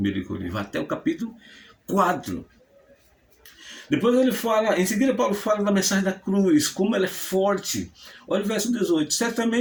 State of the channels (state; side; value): identical; both; correlation 1.00